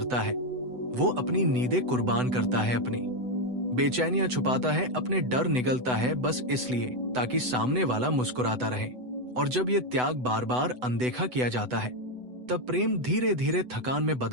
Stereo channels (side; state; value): left; late; 8.0 ms